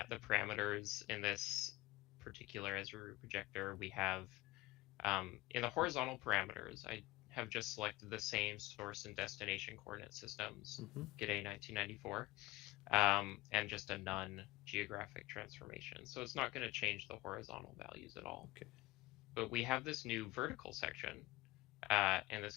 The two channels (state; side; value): quieter; right; 19.4 dB